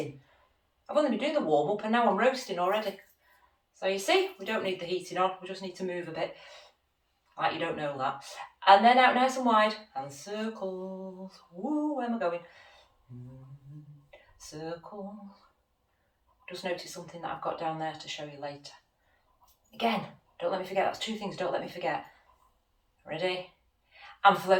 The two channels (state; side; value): identical; both; correlation 1.00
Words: I've only been doing the warm up and now I'm roasting already. So you see, we don't need the heating on. We just need to move a bit. Like you don't know that. And then out nice and wide. And circles. Woo, where am I going? Circles. Just notice something that I've got down there to show you later. Again, don't let me forget. That's 2 things don't let me forget. Ready? And